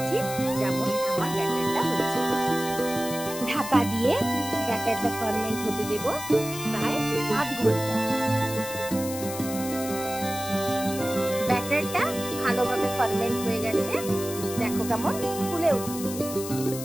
ঠিক যেমন আমার ব্যাটারটা হয়েছে। ঢাকা দিয়ে ব্যাটারটা ফার্মেন্ট হতে দেব প্রায় আধ ঘন্টা। ব্যাটারটা ভালোভাবে ফার্মেন্ট হয়ে গেছে, দেখো কেমন ফুলে উঠেছে।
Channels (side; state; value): left; noise; hiss, 9 dB below the sound